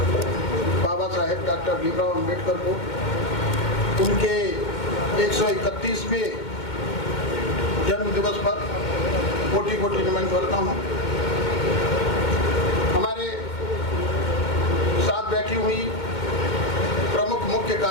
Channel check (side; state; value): right; late; 2.1 ms